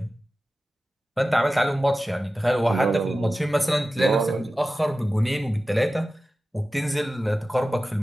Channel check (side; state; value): both; normal; correlation 0.95